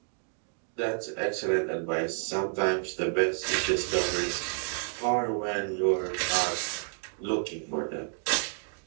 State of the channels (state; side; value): silent; left; 58 dB below the other